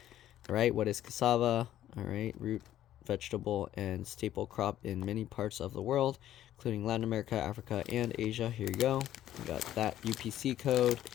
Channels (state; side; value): quieter; right; 12.4 dB